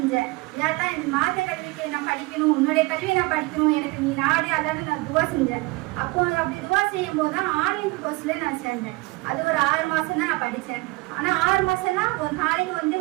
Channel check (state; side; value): quieter; left; 23.5 dB